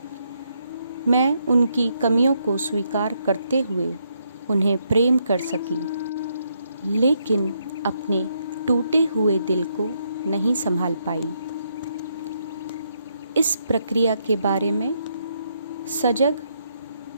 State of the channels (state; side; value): inverted; both; correlation -0.77